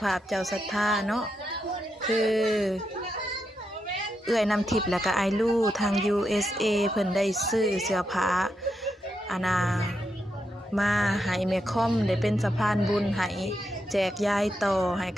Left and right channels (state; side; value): normal; both; correlation 0.84